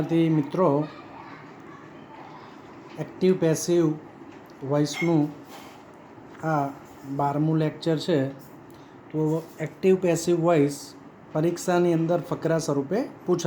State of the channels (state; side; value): identical; both; correlation 1.00